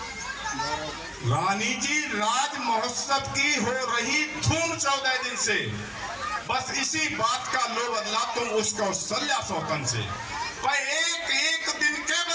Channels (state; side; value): identical; both; correlation 1.00